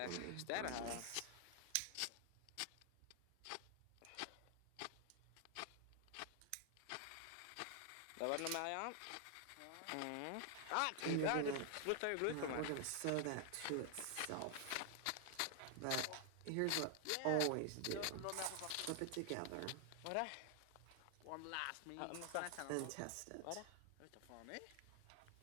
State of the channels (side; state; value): both; different; correlation 0.00